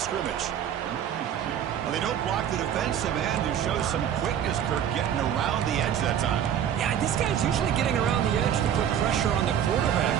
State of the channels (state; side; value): quieter; left; 9.5 dB